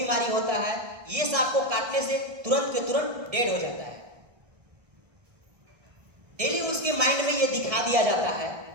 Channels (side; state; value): left; late; 1.6 ms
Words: होता है, ये सांप को काटने से तुरंत के तुरंत डेड हो जाता है। डेली उसके माइंड में ये दिखा दिया जाता है।